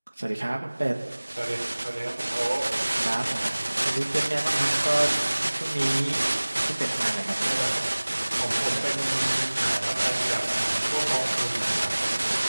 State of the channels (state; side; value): inverted; both; correlation -1.00